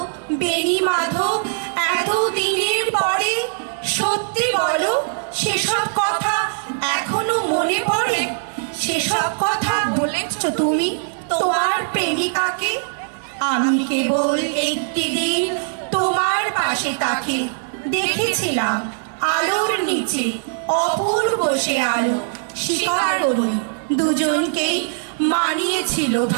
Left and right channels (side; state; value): left; silent; digital silence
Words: বেণী মাধব, এত দিনের পরে সত্যি বলো, সেসব কথা এখনো মনে পড়ে? সেসব কথা বলেছ তুমি তোমার প্রেমিকাকে? আমি কেবল একটি দিন তোমার পাশে তাকে দেখেছিলাম, আলোর নিচে অপূর্ব সে আলো। স্বীকার করি দুজনকেই মানিয়েছিল